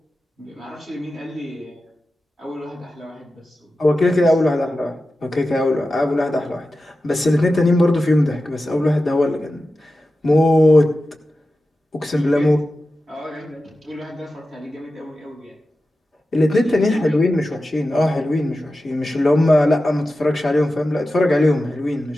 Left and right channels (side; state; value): both; normal; correlation 0.93